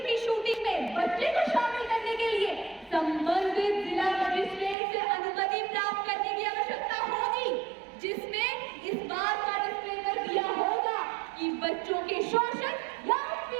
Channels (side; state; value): left; drops out; at 4.8 s